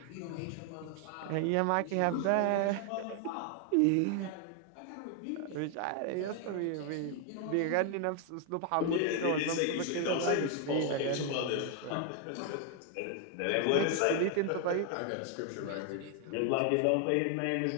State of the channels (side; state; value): both; different; correlation 0.00